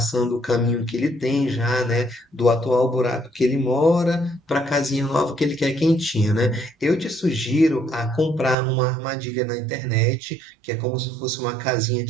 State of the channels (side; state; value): left; drops out; at 8.6 s